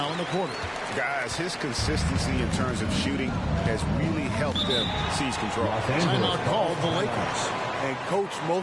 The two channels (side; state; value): both; identical; correlation 1.00